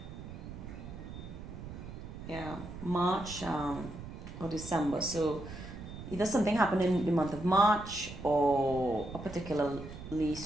March or December. So either something happened in the month of March or a particularly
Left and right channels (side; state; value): right; noise; rumble, 11 dB below the sound